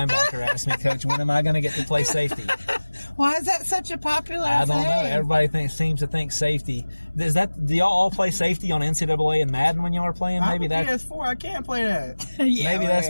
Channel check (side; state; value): both; inverted; correlation -1.00